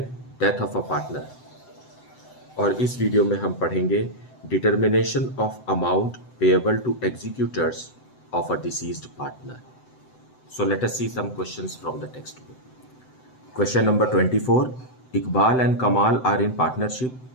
death of a partner. और इस वीडियो में हम पढ़ेंगे determination of amount payable to executors of a deceased partner. So let us see some questions from the text book. Question number 24. Iqbal and Kamal are in partnership,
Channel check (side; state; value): right; late; 7.8 ms